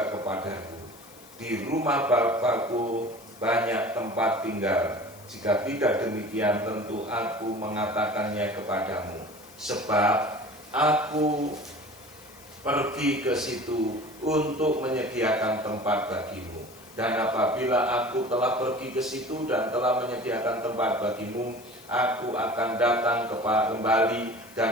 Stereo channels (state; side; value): noise; left; hiss, 22 dB below the sound